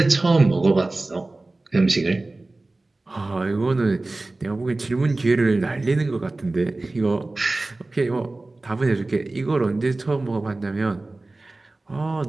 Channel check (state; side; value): quieter; left; 3.0 dB